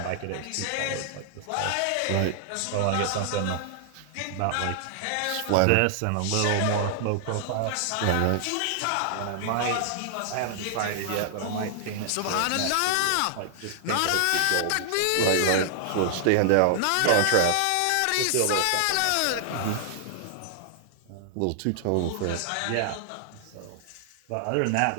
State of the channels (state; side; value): different; both; correlation -0.01